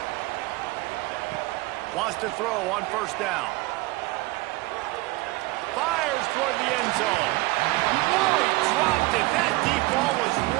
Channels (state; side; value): quieter; left; 21.2 dB